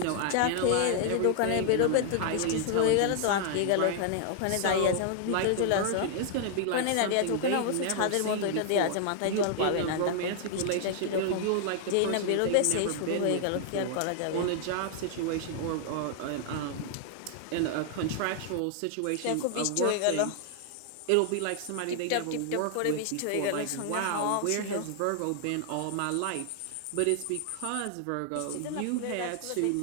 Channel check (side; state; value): both; different; correlation 0.00